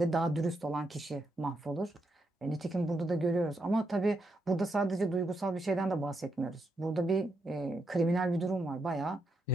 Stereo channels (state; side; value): normal; both; correlation 0.80